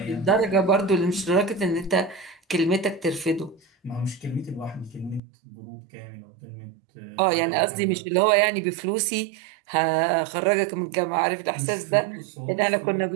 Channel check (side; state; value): left; drops out; at 5.2 s